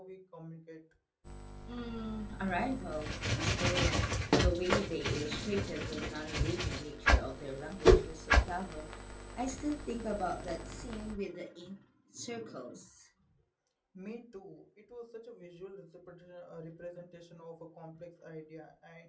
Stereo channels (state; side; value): identical; both; correlation 1.00